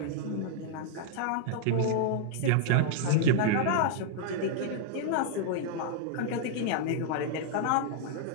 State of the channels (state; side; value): different; both; correlation -0.01